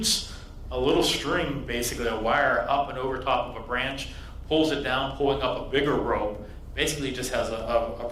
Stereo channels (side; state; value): both; identical; correlation 1.00